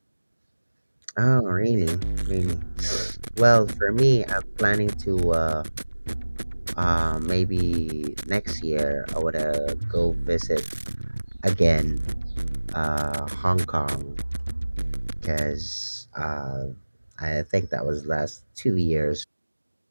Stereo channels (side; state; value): both; inverted; correlation -1.00